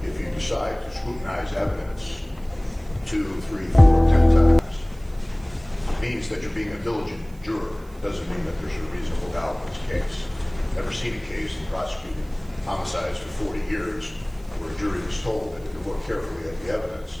if you decide to scrutinize evidence 2, 3, 4, 10 times, means that you're being a diligent juror. Doesn't mean that there's a reasonable doubt in this case. Never seen a case in prosecuting homicides for 40 years where a jury was told that if you look carefully at the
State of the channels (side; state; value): right; noise; hiss, 28 dB below the sound